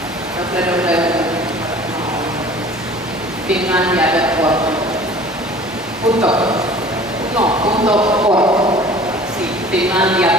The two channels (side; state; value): both; normal; correlation 0.46